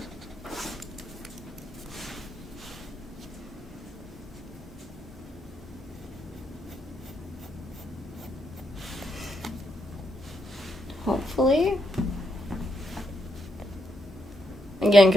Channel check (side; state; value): both; normal; correlation 0.79